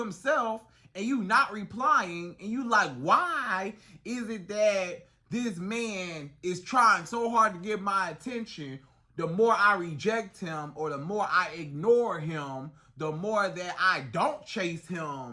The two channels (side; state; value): both; identical; correlation 1.00